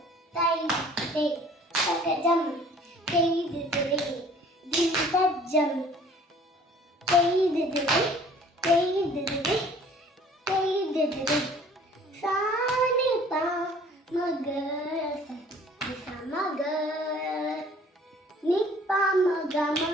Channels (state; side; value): normal; both; correlation 0.52